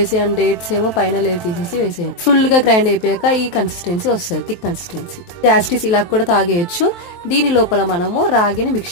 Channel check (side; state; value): right; late; 23 ms